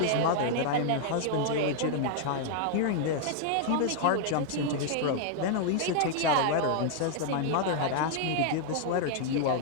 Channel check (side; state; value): both; different; correlation 0.00